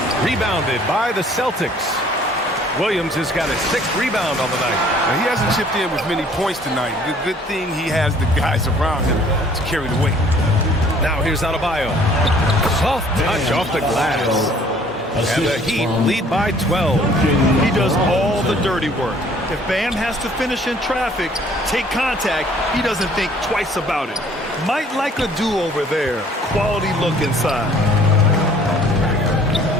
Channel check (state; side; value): normal; both; correlation 0.57